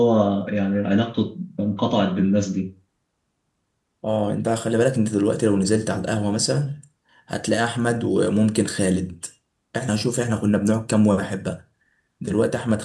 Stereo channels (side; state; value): both; identical; correlation 1.00